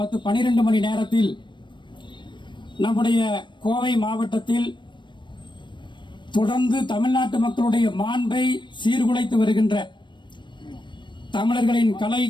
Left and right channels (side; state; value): right; late; 0.22 ms